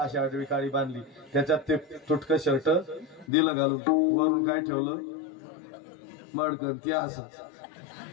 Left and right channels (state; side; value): drops out; right; at 3.2 s